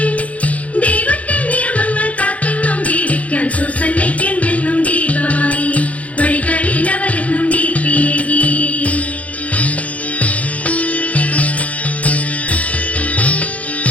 ദൈവത്തിന്റെ നിയമങ്ങൾ കാത്തെന്നും ജീവിക്കാൻ സൂസന്നയ്ക്കെന്നും ദീപമായി വഴികളിൽ അവരെന്നും ദീപിയേകി.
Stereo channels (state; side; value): late; right; 0.067 ms